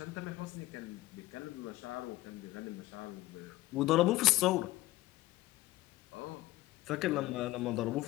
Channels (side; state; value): right; quieter; 17.3 dB